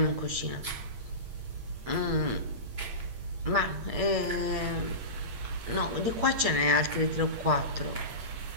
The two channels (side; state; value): left; late; 8.6 ms